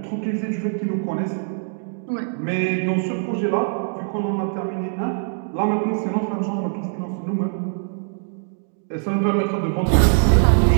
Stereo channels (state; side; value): silent; left; digital silence